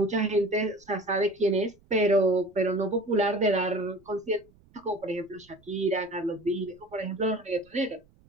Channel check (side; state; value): right; noise; rumble, 30 dB below the sound